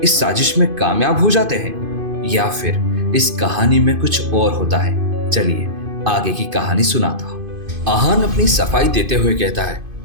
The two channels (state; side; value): late; left; 2.5 ms